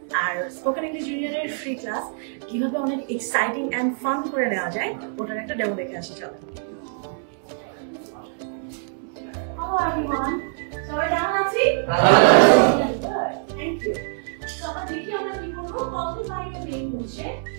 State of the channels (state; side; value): silent; left; 62 dB below the other